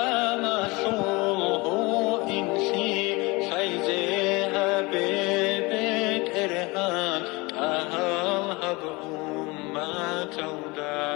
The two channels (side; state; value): right; quieter; 24.8 dB